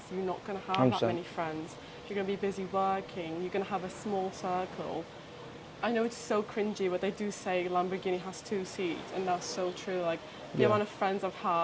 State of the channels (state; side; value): identical; both; correlation 1.00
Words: You're not gonna have 100%. that many friends. You're gonna be busy working. You're gonna have a small circle. I know it's so cringy, but they do say Lamborghini has 2 seats, and that's so true. Like the amount of friends I've